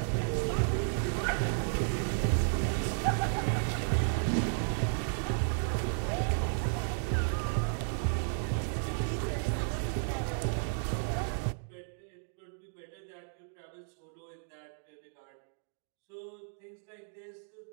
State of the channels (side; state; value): left; silent; digital silence